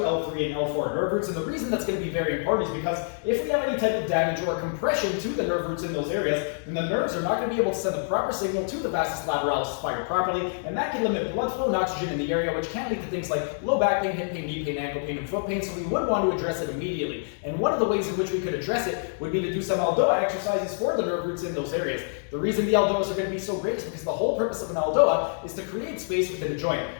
and L4 nerve roots. And the reason that's going to be very important is because if we have any type of damage or compression to the nerve roots in those areas, then the nerves are not going to be able to send the proper signal to the Vastus Lateralis to fire properly, and that can limit blood flow and oxygen in the area, which can lead to things like low back pain, hip pain, knee pain, ankle pain, and foot pain. So we would want to address it immediately. And one of the ways in which we could address it would be to do some ELDOA exercises for the nerve roots in those areas. The reason the ELDOAs are going to be so great is because the whole purpose of an ELDOA is to create space within a joint.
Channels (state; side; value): silent; right; digital silence